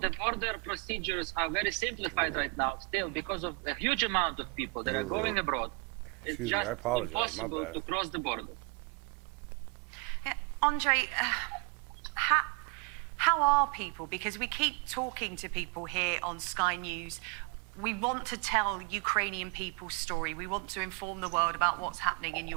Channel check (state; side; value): quieter; left; 32.9 dB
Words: border procedures are very simplified right now, still because of a huge amount of people that are going abroad. Excuse me, just I apologize. My impossible bad. to cross the border. Yeah, Andre, how are people? Because we keep talking to people here on Sky News. We want to tell Ukrainian people's story. We want to inform the world about what's happening in